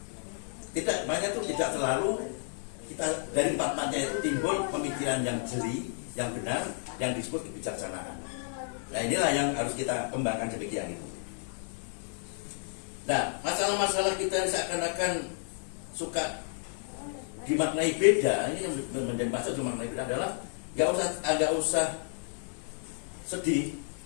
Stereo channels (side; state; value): right; silent; 57 dB below the other